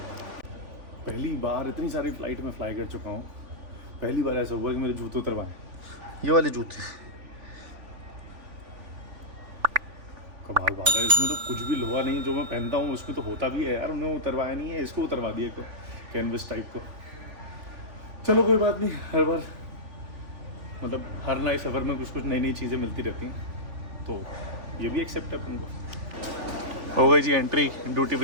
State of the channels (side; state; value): left; late; 3.5 ms